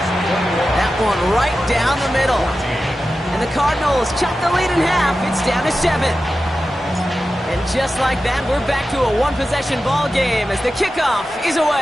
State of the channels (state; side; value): normal; both; correlation 0.93